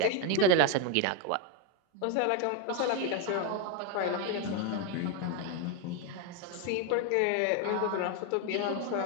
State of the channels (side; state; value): both; different; correlation 0.01